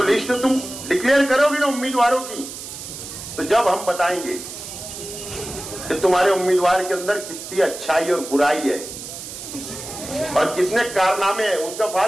लिस्ट तुम डिक्लेयर करोगी ना उम्मीदवारों की, तो जब हम बताएंगे कि तुम्हारे उम्मीदवार के अंदर कितनी अच्छाई और बुराई है और कितने कारनामे हैं, उनका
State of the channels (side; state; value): right; noise; hiss, 10 dB below the sound